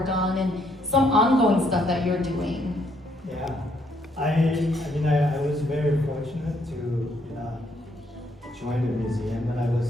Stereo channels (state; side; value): normal; both; correlation 0.71